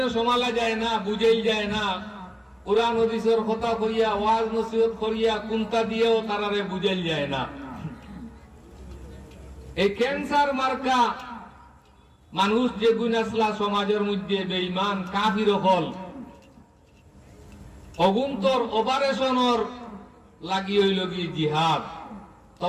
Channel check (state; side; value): identical; both; correlation 1.00